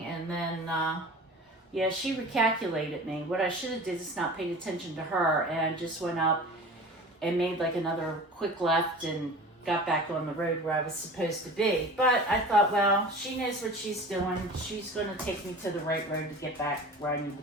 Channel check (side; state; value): both; normal; correlation 0.38